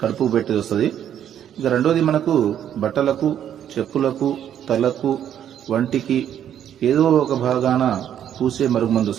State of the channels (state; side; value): quieter; left; 10.0 dB